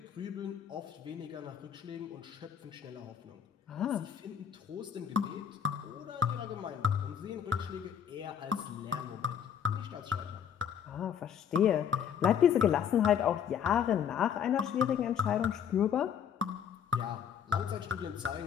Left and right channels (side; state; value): right; quieter; 8.3 dB